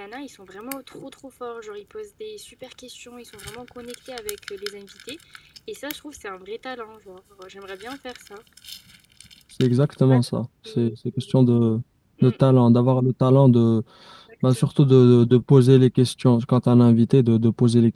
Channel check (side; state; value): both; identical; correlation 1.00